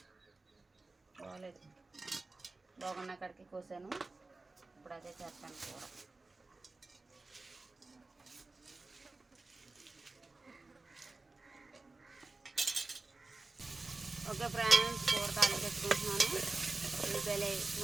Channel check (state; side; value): quieter; left; 3.4 dB